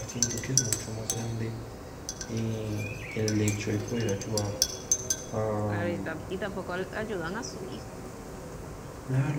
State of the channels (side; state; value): both; identical; correlation 1.00